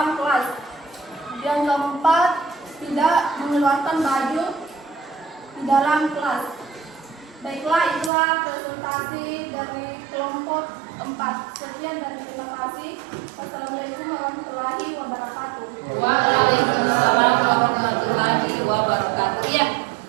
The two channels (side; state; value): left; drops out; at 8.1 s